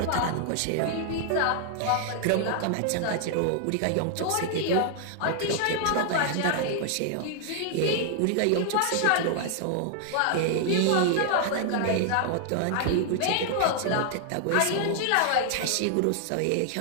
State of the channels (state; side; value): different; both; correlation 0.00